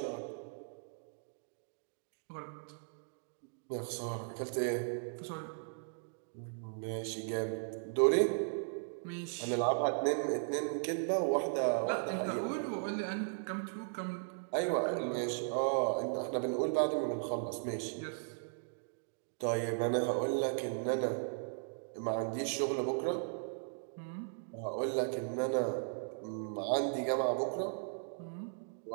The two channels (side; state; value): left; silent; digital silence